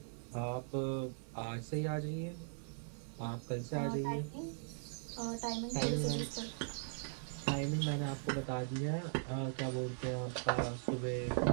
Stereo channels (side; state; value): left; silent; 51 dB below the other